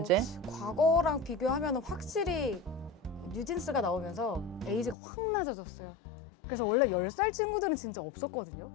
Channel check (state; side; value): drops out; right; at 5.0 s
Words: 과거랑 비교하면 확실히 뉴진스가 나오면서 에이지가 확 낮아졌어요. 그래서 원래 10살 친구들은 진짜 없었거든요.